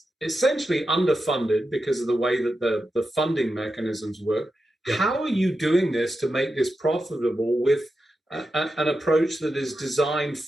essentially underfunded because of the way that the funding mechanisms work. Yep. How are you doing this to make this profitable with an approach that is designed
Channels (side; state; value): both; normal; correlation 0.89